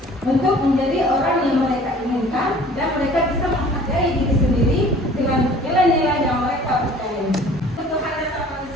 untuk menjadi orang yang mereka inginkan dan mereka bisa menghargai diri sendiri dengan nilai-nilai yang mereka percayai. Kebutuhan dasar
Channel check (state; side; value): normal; both; correlation 0.50